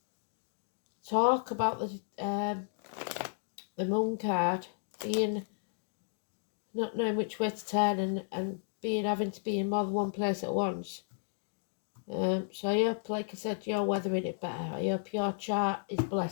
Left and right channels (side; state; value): right; silent; digital silence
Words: Talk about the moon card being not knowing which way to turn and having to be in more than one place at once. So I hope, like I said, you're weathering it better. I hope your chart is